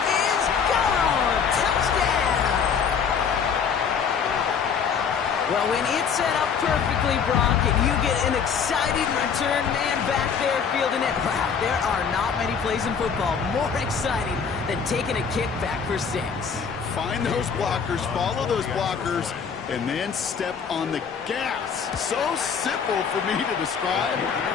is gone. Touchdown. Well, when it's set up perfectly, Brock, and you get an exciting return man back there fielding it, wow, there are not many plays in football more exciting than taking a kick back for 6. Find those blockers, follow those blockers, and then step on the gas. So simple for me to describe,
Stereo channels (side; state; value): right; quieter; 6.6 dB